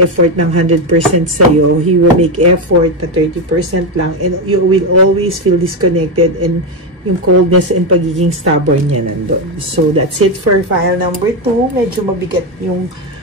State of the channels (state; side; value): normal; both; correlation 0.10